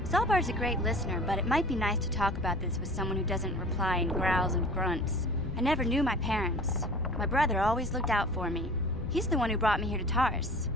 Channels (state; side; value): noise; left; rumble, 10 dB below the sound